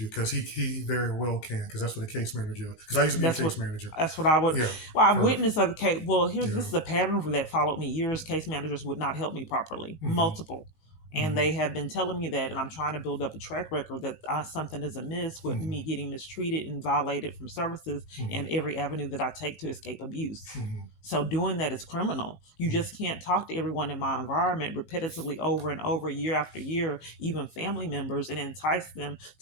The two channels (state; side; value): late; right; 19 ms